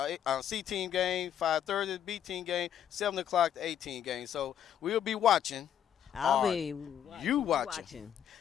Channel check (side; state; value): right; quieter; 9.6 dB